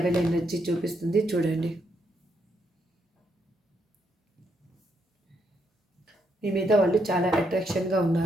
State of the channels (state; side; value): normal; both; correlation 0.77